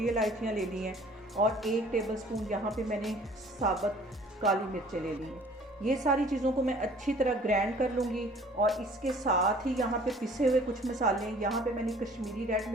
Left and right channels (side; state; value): both; normal; correlation 0.52